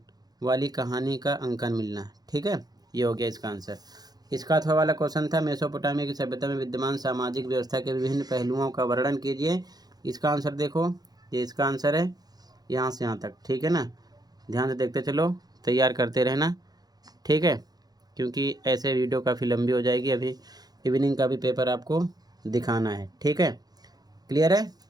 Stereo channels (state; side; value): late; left; 0.19 ms